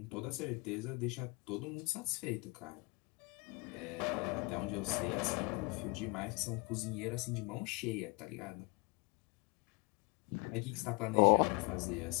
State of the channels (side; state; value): right; quieter; 29.4 dB